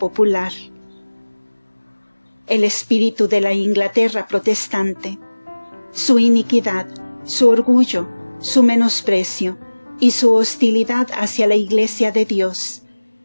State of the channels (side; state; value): both; inverted; correlation -1.00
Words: El espíritu de la Inglaterra protestante, su iniquidad, su orgullo, su menosprecio y su hostilidad hacia la Iglesia de Dios,